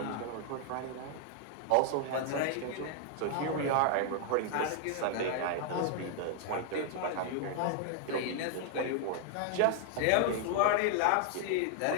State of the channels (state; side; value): different; both; correlation 0.00